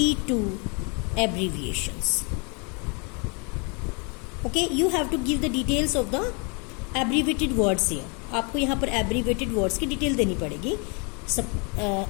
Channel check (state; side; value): quieter; right; 33.6 dB